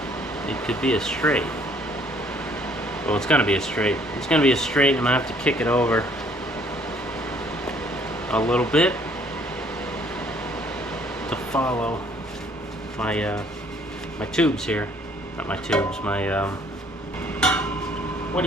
it could be a straight. Well, it's going to be a straight. It's going to be a straight, and I'm going to have to kick it over a little bit to follow my my tubes here. Not my tubes, my what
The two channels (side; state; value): both; normal; correlation 0.61